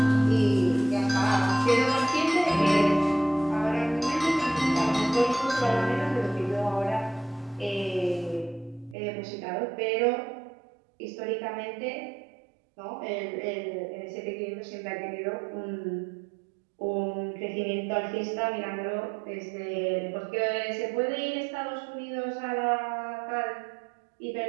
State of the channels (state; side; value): drops out; left; at 9.0 s